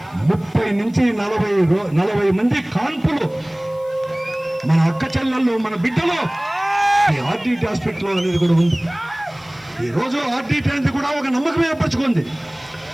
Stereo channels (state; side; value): noise; left; hiss, 29 dB below the sound